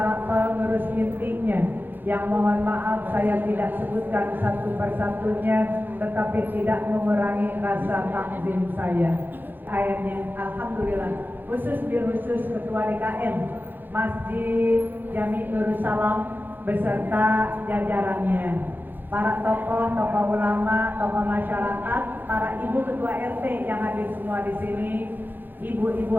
pengurus intinya, yang mohon maaf saya tidak sebutkan satu persatunya, tetapi tidak mengurangi rasa takzim saya. Ayatnya alhamdulillah, khusus Ketua DKM Masjid Jami Nurus Salam beserta jajarannya, para tokoh ulama, tokoh masyarakat, para ibu ketua RT yang hadir semua di sini, ibu-ibu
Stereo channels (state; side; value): late; left; 0.091 ms